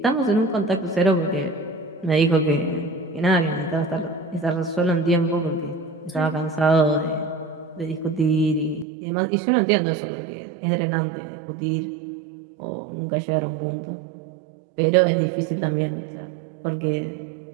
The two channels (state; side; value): drops out; left; at 8.8 s